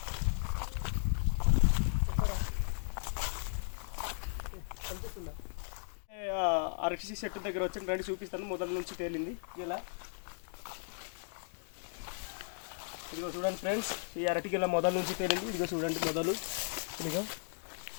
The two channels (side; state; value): right; silent; digital silence